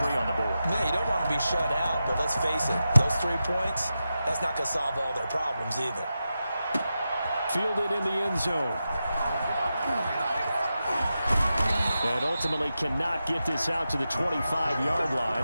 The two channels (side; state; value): both; inverted; correlation -0.90